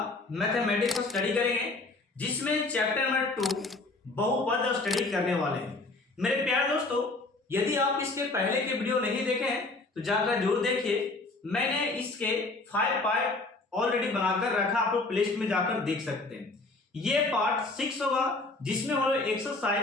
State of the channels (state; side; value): quieter; right; 3.3 dB